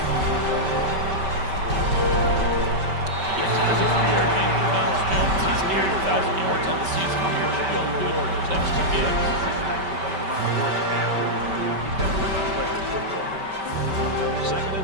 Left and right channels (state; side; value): late; left; 5.2 ms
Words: Yes, there's a 3-yard gain for Miles Jones. He's nearing 1,000 yards on the season here. Should be able to do it for his next 2 games. Second